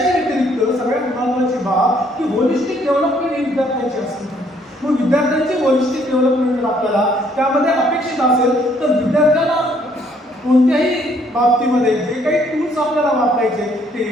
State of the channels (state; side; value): normal; both; correlation 0.65